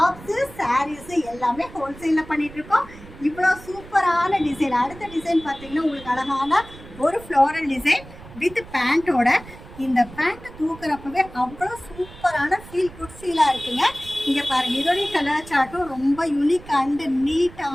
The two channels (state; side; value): noise; right; rumble, 18 dB below the sound